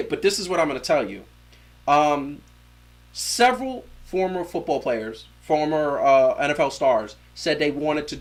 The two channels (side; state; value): both; identical; correlation 1.00